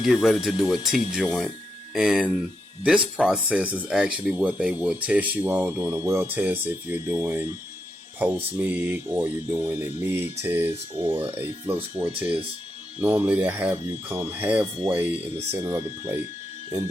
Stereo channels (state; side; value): normal; both; correlation 0.83